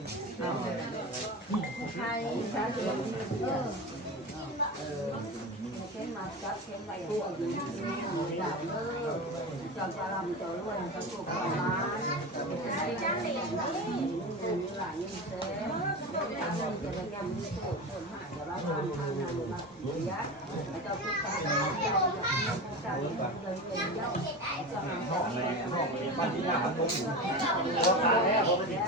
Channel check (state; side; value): normal; both; correlation 0.25